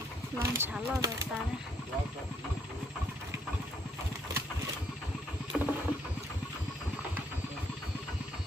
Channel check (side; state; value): both; normal; correlation 0.69